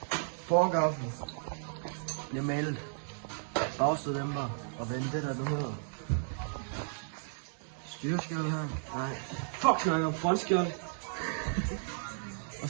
Forgaflen bliver malet, bagstøddæmper og vende det der nu hedder styreskjold her. Nej, fuck snakker om frontskjold. Og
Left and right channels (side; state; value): left; silent; digital silence